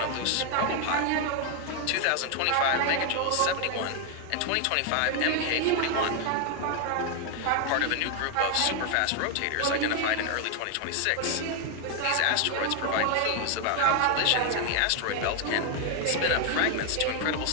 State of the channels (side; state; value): both; different; correlation 0.01